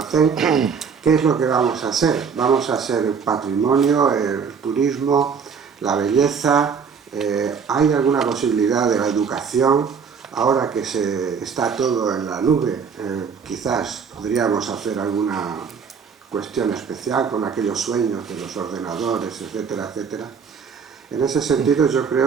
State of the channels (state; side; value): quieter; left; 6.3 dB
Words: ¿qué es lo que vamos a ser? Vamos a ser el patrimonio, el turismo, la belleza. ¿Hay alguna posibilidad de la educación? Ahora que está todo en la nube, quizás podríamos hacer alguna cuestión especial con aquellos sueños de los ordenadores, etcétera, etcétera. En ese sentido, yo